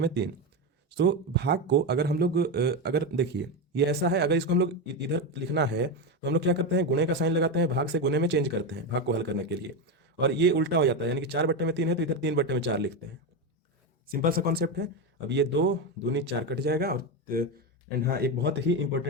तो भाग को अगर हम लोग अगर देखिए ये ऐसा है, अगर इसको हम लोग इधर लिखना है तो हम लोग क्या करते हैं, गुणे का साइन लगाते हैं, भाग से गुणे में चेंज करते हैं भाग को हल करने के लिए, और ये उल्टा हो जाता है, यानी कि 4/3 है तो इधर 3/4 लिखते हैं। सिंपल सा कॉन्सेप्ट है। अब ये 2 दूनी 4 कट जाएगा, और एंड हाँ, एक बहुत ही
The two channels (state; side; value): normal; both; correlation 0.13